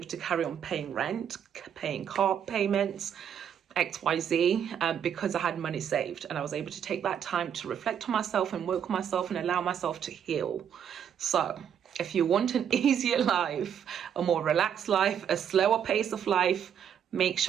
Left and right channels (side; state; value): left; quieter; 8.7 dB